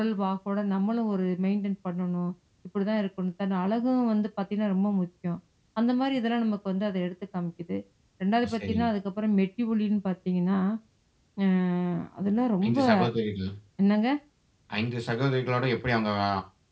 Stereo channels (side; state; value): both; identical; correlation 1.00